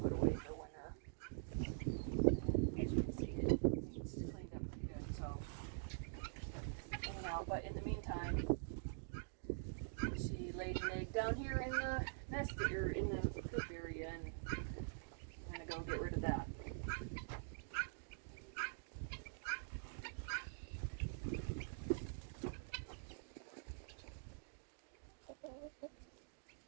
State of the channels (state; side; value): silent; left; digital silence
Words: put away for winter. And as you can see, it's cleaned up pretty good. So, anyhow, but in the meantime, she laid an egg down here in the nest or in the coop area, and I'm gonna go get rid of that.